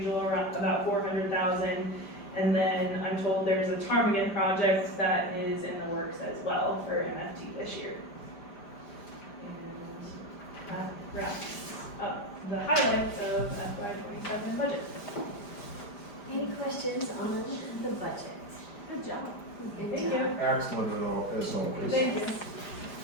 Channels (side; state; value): right; late; 5.0 ms